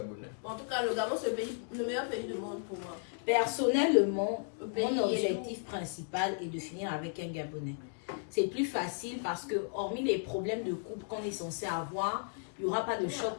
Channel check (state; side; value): silent; right; digital silence